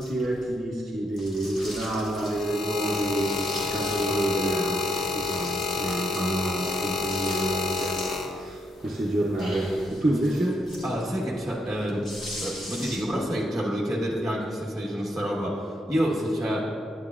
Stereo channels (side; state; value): both; normal; correlation 0.77